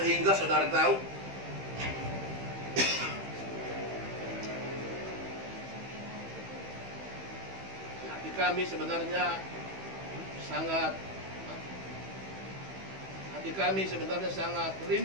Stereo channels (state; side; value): late; left; 15 ms